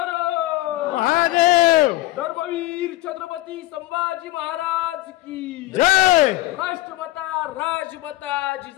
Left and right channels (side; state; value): right; quieter; 17.0 dB